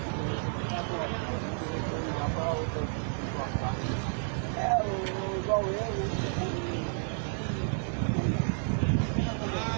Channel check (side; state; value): left; silent; 57 dB below the other